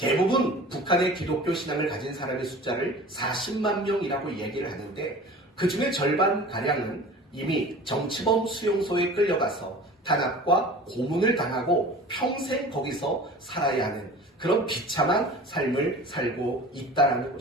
북한의 기독교 신앙을 가진 사람의 숫자를 40만 명이라고 얘기를 하는데 그 중에 절반가량은 이미 정치범 수용소에 끌려가서 탄압과 고문을 당하고 평생 거기서 살아야 하는 그런 비참한 삶을 살고 있다는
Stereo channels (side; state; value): both; normal; correlation 0.40